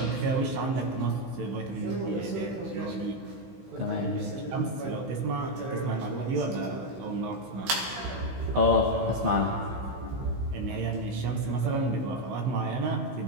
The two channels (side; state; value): left; late; 16 ms